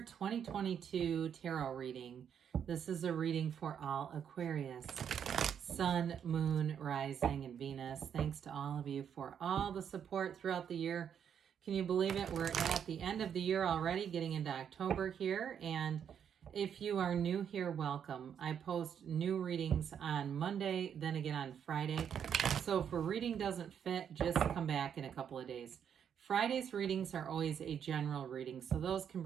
2022 tarot reading. This is a reading for all Aquarius, Sun, Moon, Rising, and Venus. Thanks to all of you for all the support throughout the year. Can you believe it? We're at the end of the year already, getting into October here. And if you are new here, welcome. I post new readings on Monday, then again on Friday. So if a reading doesn't fit, just come back in a couple of days. Friday's readings are always a general reading, so those can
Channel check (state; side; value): quieter; left; 8.3 dB